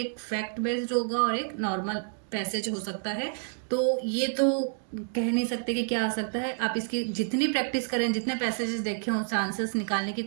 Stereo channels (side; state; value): left; silent; 59 dB below the other